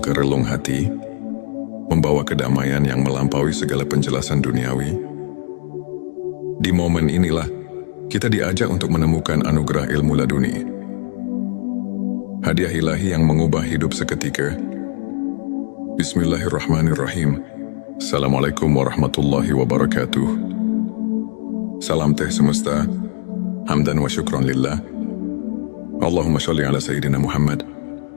relung hati, membawa kedamaian yang melampaui segala penjelasan duniawi. Di momen inilah kita diajak untuk menemukan anugerah ilmu laduni, hadiah ilahi yang mengubah hidup seketika. Bismillahirrahmanirrahim. Assalamualaikum warahmatullahi wabarakatuh. Salam teh semesta, hamdan wa syukran lillah. Allahumma sholli ala Sayyidina Muhammad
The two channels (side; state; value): right; silent; digital silence